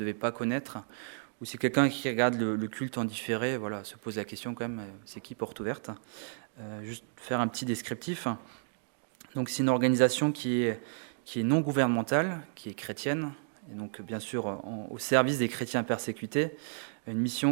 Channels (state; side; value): silent; left; digital silence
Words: pas connaître, ou si quelqu'un qui regarde le culte en différé, voilà, se pose la question quand même, c'est qui Porte Ouverte ? Juste faire un petit descriptif. Donc c'est une organisation qui est non gouvernementale, qui est chrétienne, et donc bien sûr au service des chrétiens persécutés. Une